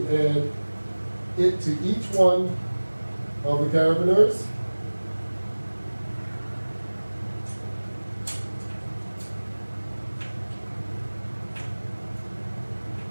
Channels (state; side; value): inverted; both; correlation -1.00